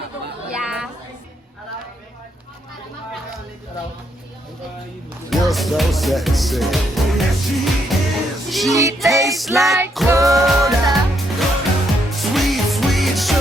kung... Yeah. You're so sexy. She tastes like cola. Sweet, sweet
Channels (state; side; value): normal; both; correlation 0.75